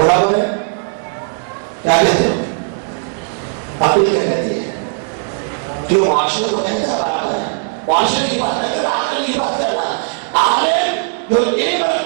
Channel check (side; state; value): left; silent; 58 dB below the other